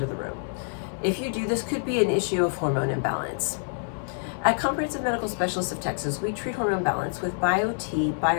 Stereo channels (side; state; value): right; silent; digital silence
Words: the room? If you do, this could be an issue of hormone imbalance. At Comprehensive Medical Specialists of Texas, we treat hormone balance with BioTe